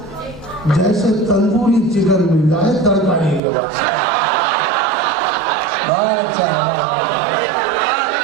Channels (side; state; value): left; drops out; at 3.4 s